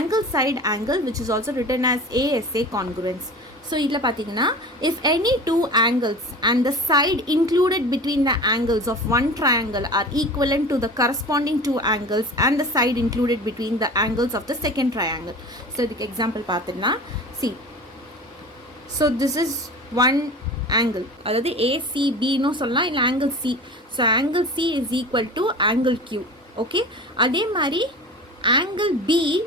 side angle, which is also written as ASA congruence. So idla pathina, if any two angles and the side included between the angles of one triangle are equivalent to the corresponding two angles and the side included between the angles of the second triangle. So the example pathina, see, so this is one angle, adhaadu ACB no solla illa angle C. So angle C is equal to angle Q. Okay, அதே மாதிரி angle B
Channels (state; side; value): normal; both; correlation 0.36